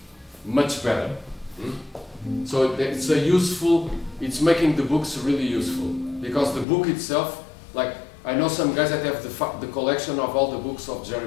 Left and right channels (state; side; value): drops out; right; at 6.7 s